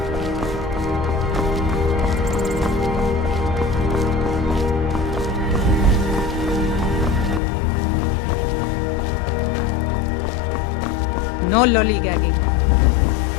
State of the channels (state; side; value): drops out; right; at 7.4 s